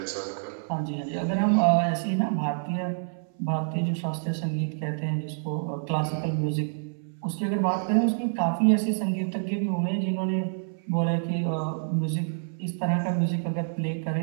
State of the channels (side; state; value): left; silent; 60 dB below the other